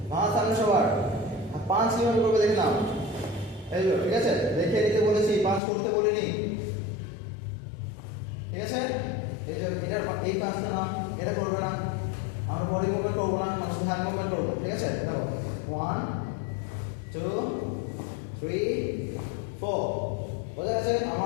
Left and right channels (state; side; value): drops out; right; at 5.6 s